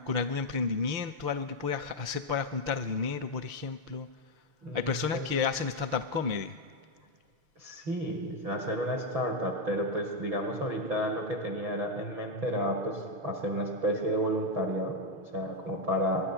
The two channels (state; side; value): late; left; 6.6 ms